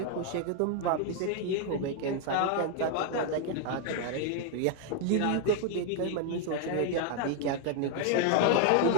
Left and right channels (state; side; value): different; both; correlation 0.01